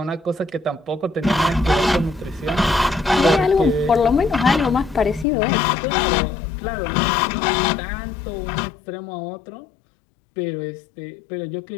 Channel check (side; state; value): right; drops out; at 5.2 s